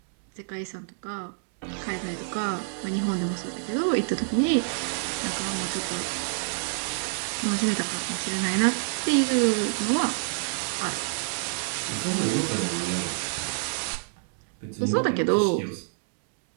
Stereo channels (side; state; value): left; silent; 60 dB below the other